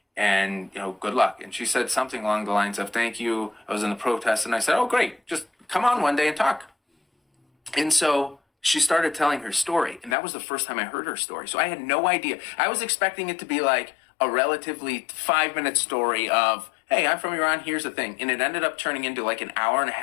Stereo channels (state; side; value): drops out; right; at 10.2 s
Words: and good luck." And she said something along the lines of, "Thank you. I was in the protest," and I said, "Oh, great. Just come on one day and talk." And so she started telling her story, and that was the first time I heard her story. So I had no idea. I was expecting it to be like a relatively 5-minute story of, "Hey, I'm from Iran, here's the thing." And it ended up turning into like an hour and a